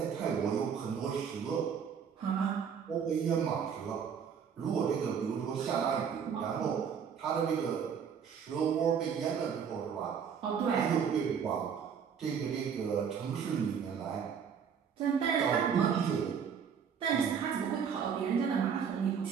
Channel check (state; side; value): quieter; left; 7.2 dB